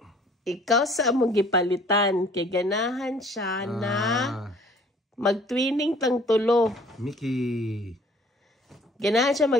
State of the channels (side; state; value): both; normal; correlation 0.54